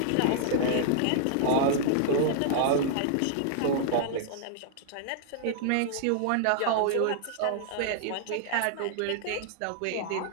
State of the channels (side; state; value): both; different; correlation -0.01